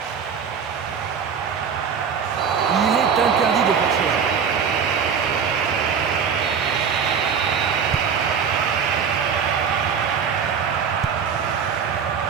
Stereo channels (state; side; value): quieter; left; 6.8 dB